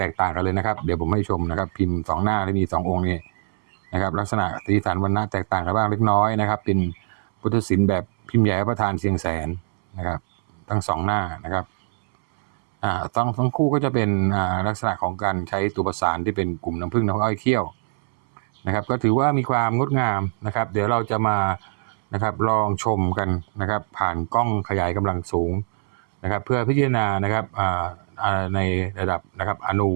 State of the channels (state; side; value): silent; left; 64 dB below the other